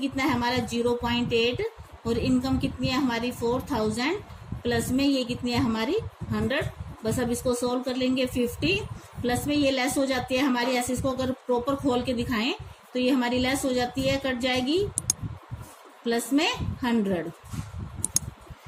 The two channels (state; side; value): identical; both; correlation 1.00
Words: है हमारा 0.8 और इनकम कितनी है हमारी 4000 प्लस में ये कितनी है हमारी 100। बस अब इसको सोल्व कर लेंगे। 50 प्लस में ये लेस हो जाती है हमारी, ऐसे इसको अगर प्रॉपर खोल के दिखाएं तो ये हमारी लेस हो जाती है, कट जाएगी, प्लस में 100।